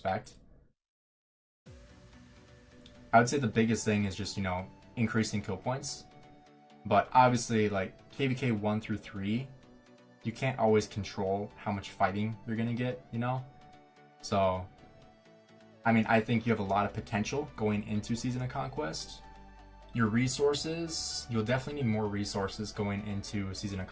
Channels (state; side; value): identical; both; correlation 1.00